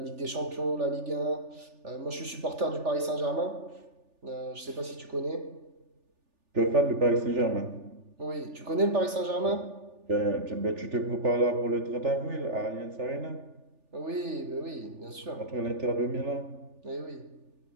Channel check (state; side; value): late; left; 3.4 ms